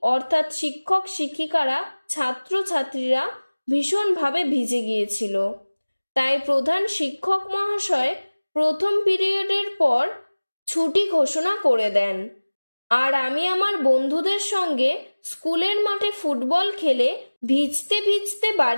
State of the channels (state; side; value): inverted; both; correlation -1.00